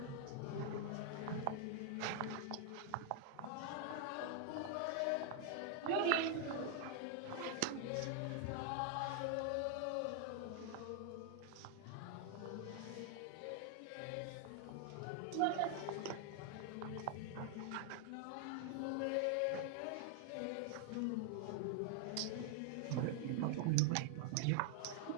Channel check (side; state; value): both; different; correlation 0.00